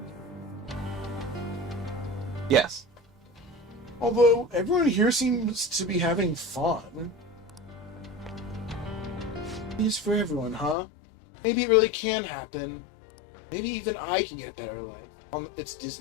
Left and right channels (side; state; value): right; drops out; at 10.8 s